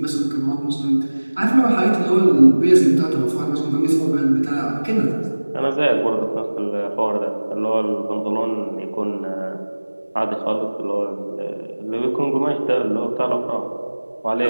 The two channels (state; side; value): inverted; both; correlation -1.00